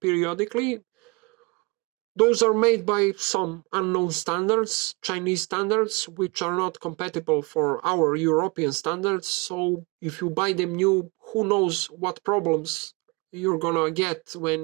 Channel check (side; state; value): left; quieter; 27.6 dB